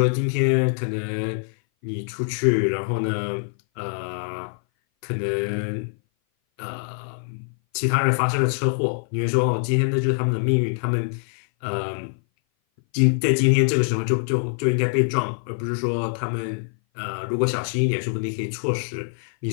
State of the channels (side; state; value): right; silent; 58 dB below the other